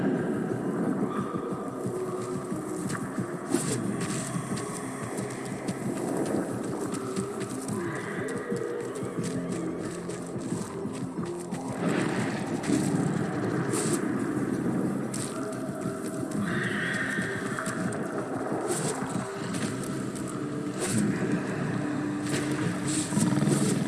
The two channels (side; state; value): both; identical; correlation 1.00